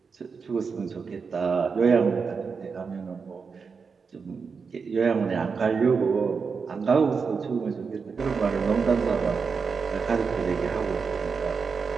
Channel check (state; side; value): quieter; left; 5.4 dB